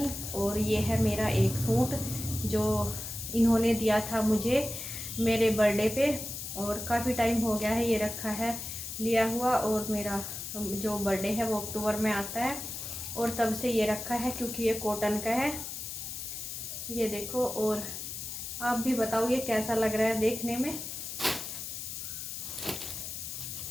और ये है मेरा एक सूट जो इन्होंने दिया था मुझे मेरे बर्थडे पे, और काफ़ी टाइम हो गया है ये रखा है लिया हुआ। और मेरा जो बर्थडे है वो अक्टूबर में आता है और तब से ये रखा है क्योंकि ये कॉटन का है। ये देखो, और आप भी बताओ ये कैसा लग रहा है देखने में।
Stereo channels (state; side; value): noise; left; hiss, 7 dB below the sound